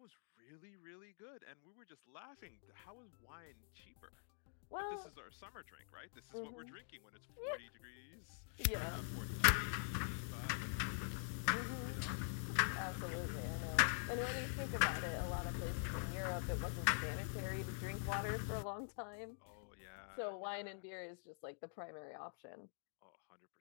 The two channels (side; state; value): right; silent; digital silence